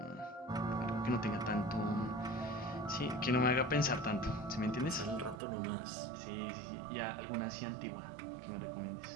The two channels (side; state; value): left; drops out; at 5.4 s